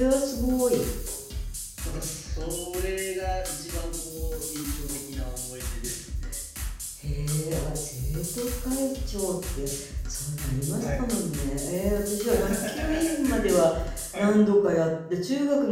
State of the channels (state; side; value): identical; both; correlation 1.00